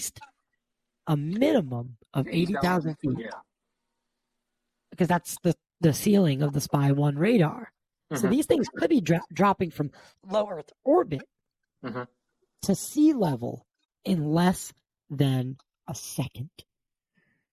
a minimum of 80,000 feet." Yeah. Because that's the ceiling of the Spy 1 radar. So Mm-hmm. these things could be dropping from low Earth orbit Mm-hmm. to sea level in less than a second.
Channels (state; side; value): identical; both; correlation 1.00